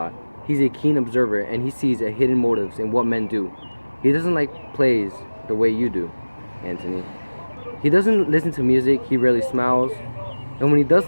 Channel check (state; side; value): inverted; both; correlation -1.00